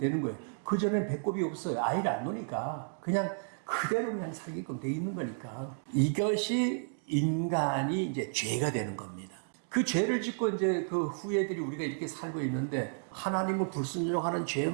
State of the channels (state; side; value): silent; left; digital silence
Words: 거예요. 그전에는 배꼽이 없어요. 아이를 안 놓으니까. 그냥 그대로 그냥 살게끔 돼 있는 거니까. 이것이 인간이 이제 죄가 되는 겁니다. 그 죄를 짓고 이제 그 후예들이 우리가 이렇게 살고 있는데 하나님을 불순종하는